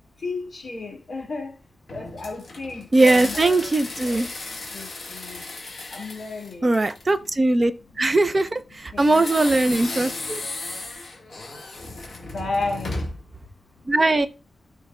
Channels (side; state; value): both; normal; correlation 0.95